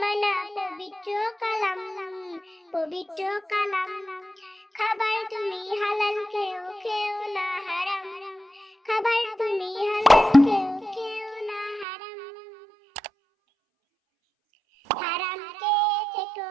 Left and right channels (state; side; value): drops out; left; at 11.9 s